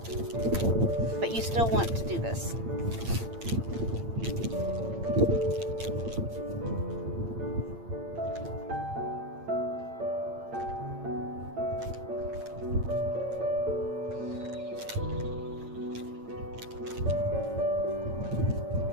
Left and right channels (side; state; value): left; late; 8.8 ms